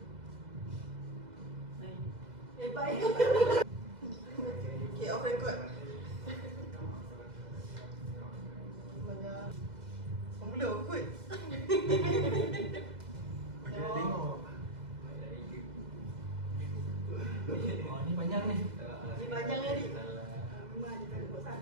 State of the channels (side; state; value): left; late; 2.0 ms